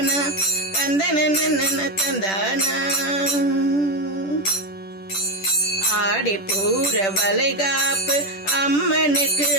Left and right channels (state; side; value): late; right; 10 ms